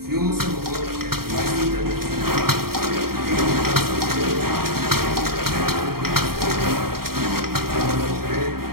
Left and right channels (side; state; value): left; late; 0.94 ms